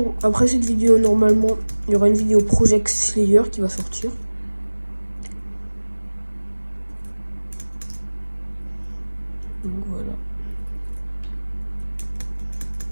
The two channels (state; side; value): inverted; both; correlation -1.00